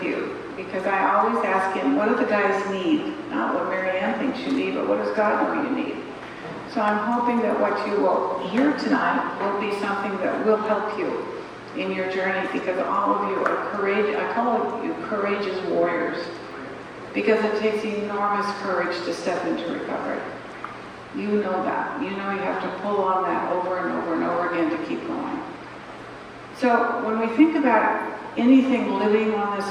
you, because I always ask Him, what do the guys need? Not what Mary Ann thinks you need, but what does God know you need? So I'm hoping that what you will hear tonight will be something that will help you in your journey, because all of you are courageous. I call you courageous warriors, because it takes enormous courage to step into recovery. You know that. You know you have to pull on that over and over and over again to keep going. So when we think about anything living on this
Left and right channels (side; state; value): both; identical; correlation 1.00